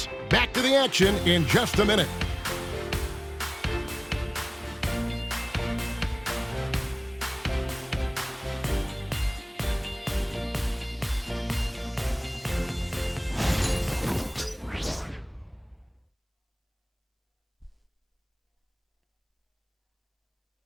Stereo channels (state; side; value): identical; both; correlation 1.00